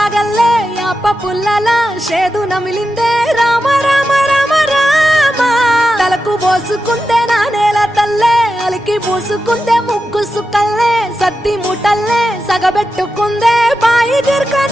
యాప పుల్లల షేదు నమిలిందే రామ రామ రామ రామ తలకు పోసుకుందే నానేల తల్లే అలికి పూసుకుందే ముగ్గు సుక్కల్లే సత్తి మూటల్లే సగబెట్టుకుందే బాయి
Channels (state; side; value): normal; both; correlation 0.90